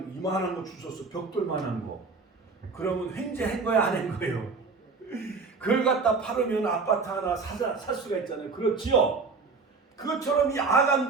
이만한 거 주웠어, 벽돌만한 거. 그러면 횡재한 거야, 안 한 거예요? 그걸 갖다 팔으면 아파트 하나 살 수가 있잖아요. 그렇지요? 그것처럼 이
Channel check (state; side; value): quieter; left; 4.4 dB